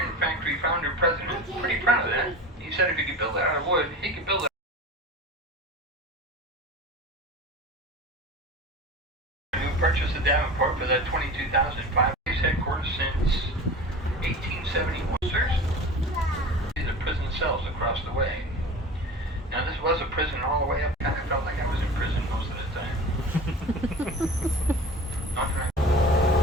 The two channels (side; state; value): both; normal; correlation 0.35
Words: factory founder president. Pretty proud of that. He said if he could build it out of wood, he could build it. Purchased the Davenport for that $22,500. Headquarters since 1871. These are prison cells across the way. Now this was a prison all the way up. Kind of felt like I was in prison most of the time.